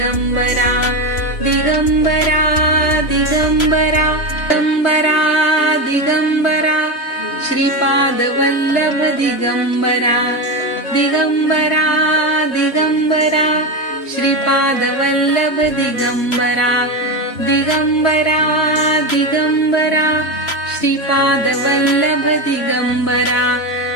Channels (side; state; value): right; late; 3.0 ms